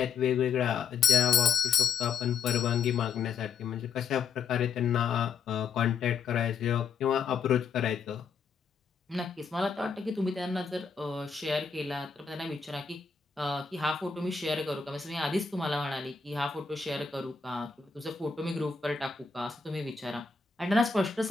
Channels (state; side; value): quieter; right; 5.9 dB